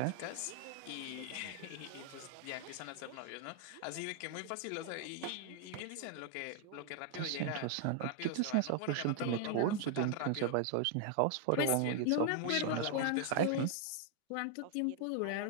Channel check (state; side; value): different; both; correlation 0.00